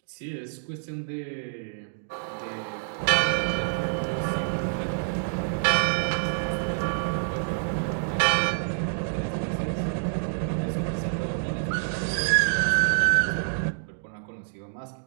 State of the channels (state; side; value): silent; left; digital silence